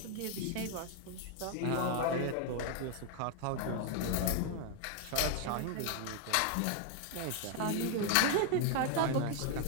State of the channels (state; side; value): different; both; correlation 0.01